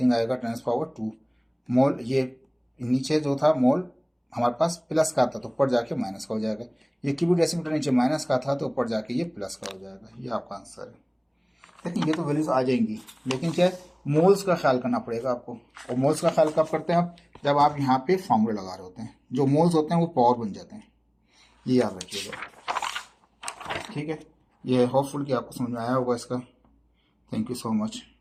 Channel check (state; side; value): identical; both; correlation 1.00